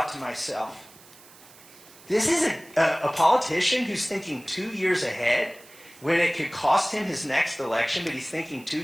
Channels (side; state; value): right; noise; hiss, 23 dB below the sound